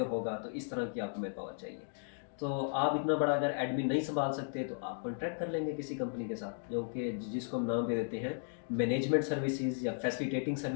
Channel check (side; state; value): right; silent; digital silence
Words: होगा, तो इस तरह की आपको मैन पावर चाहिए। तो आप इतना बड़ा अगर एडमिन नहीं संभाल सकते तो आप कॉन्ट्रैक्ट कर लेंगे किसी कंपनी के साथ, जो कि जिसको हम नाम दे देते हैं मैनेजमेंट सर्विसेज या फैसिलिटेटिंग